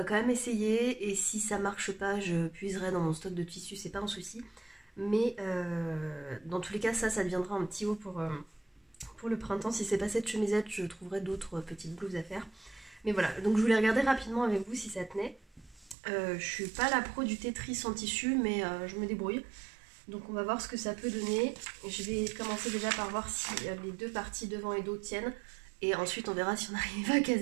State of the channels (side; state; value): left; drops out; at 16.0 s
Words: quand même essayer, et si ça marche pas je puiserai dans mon stock de tissu, c'est pas un souci, mais dans tous les cas ça deviendra un petit haut pour le printemps. Si c'est pas cette chemisette, je trouverai d'autres petites blouses à faire. Mais voilà, donc je voulais regarder rapidement avec vous si ça tenait. Je suis pas la pro du Tetris en tissu, mais je me débrouille. Donc on va voir ce que ça peut donner. Je vais commencer déjà par voir si les deux parties devant et dos tiennent. Et ensuite on verra si on arrive à